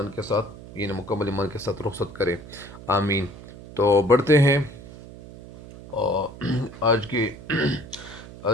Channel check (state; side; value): noise; right; hum, 16 dB below the sound